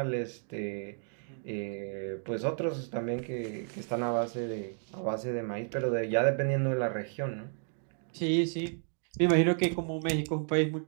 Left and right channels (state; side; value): silent; left; 56 dB below the other